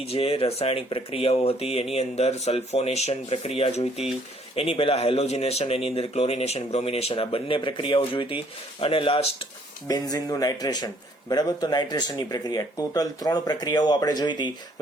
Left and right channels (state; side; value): normal; both; correlation 0.63